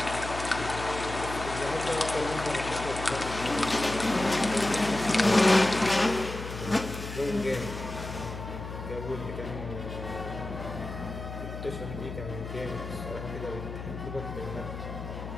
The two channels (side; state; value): left; noise; hum, 8 dB below the sound